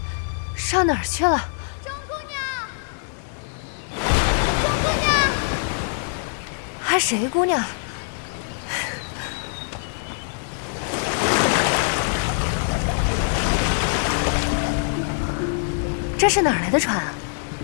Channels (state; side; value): silent; right; digital silence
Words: 上哪儿去了？钟姑娘，钟姑娘，还谁姑娘？这是哪儿来的船啊？